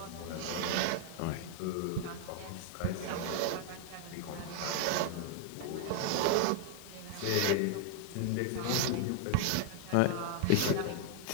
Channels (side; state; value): both; different; correlation 0.00